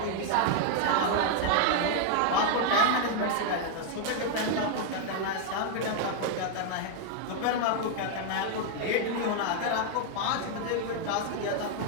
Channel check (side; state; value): both; different; correlation 0.00